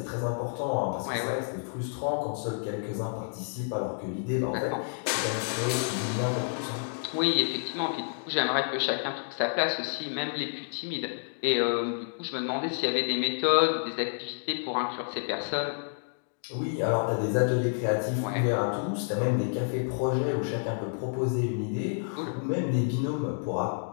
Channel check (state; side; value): silent; right; digital silence